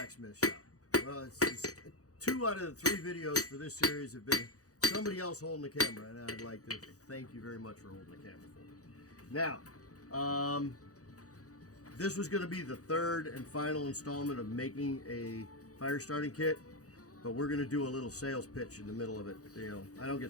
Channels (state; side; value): late; right; 0.66 ms